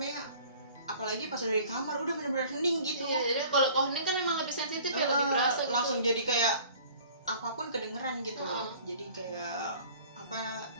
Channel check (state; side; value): inverted; both; correlation -0.49